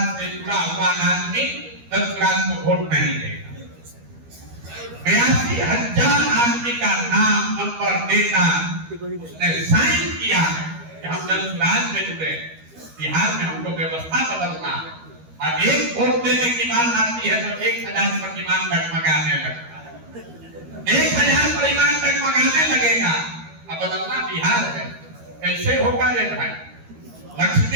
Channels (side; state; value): left; late; 13 ms